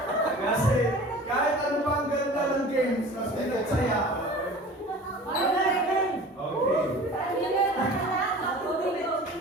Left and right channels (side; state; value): both; normal; correlation 0.41